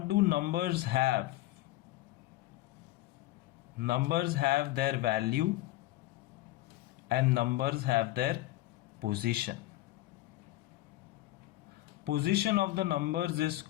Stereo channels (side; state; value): right; quieter; 16.9 dB